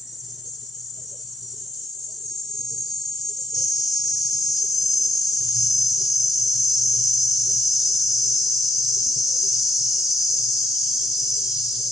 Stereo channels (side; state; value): both; normal; correlation 0.72